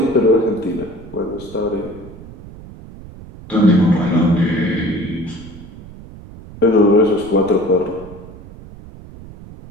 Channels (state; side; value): noise; right; rumble, 17 dB below the sound